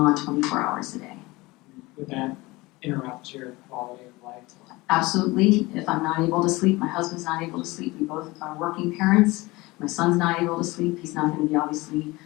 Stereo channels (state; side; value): quieter; right; 21.8 dB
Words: 24 hours a day. Would that interrupt your quality of life? Absolutely. If I'm not able to sleep, my husband's not able to sleep. We both are working parents. My son's not able to sleep. He's not going to be, obviously,